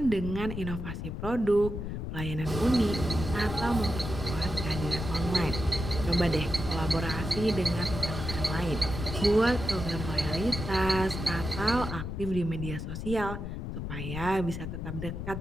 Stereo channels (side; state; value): left; noise; rumble, 5 dB below the sound